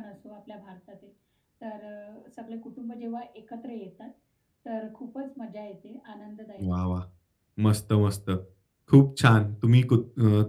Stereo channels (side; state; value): both; identical; correlation 1.00